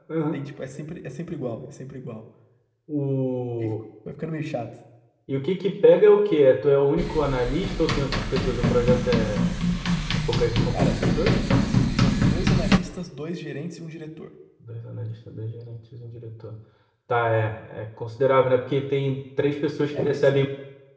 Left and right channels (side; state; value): both; identical; correlation 1.00